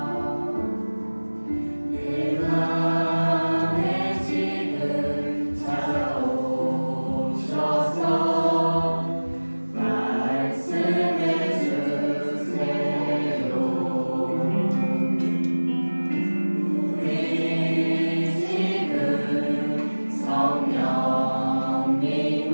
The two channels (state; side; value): inverted; both; correlation -1.00